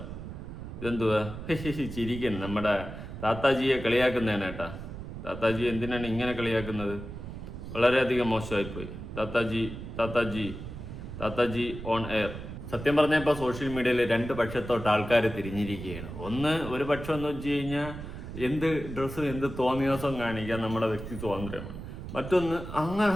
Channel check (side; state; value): right; noise; rumble, 9 dB below the sound